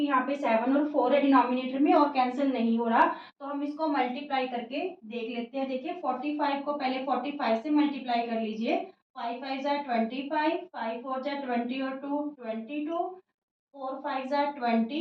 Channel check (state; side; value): identical; both; correlation 1.00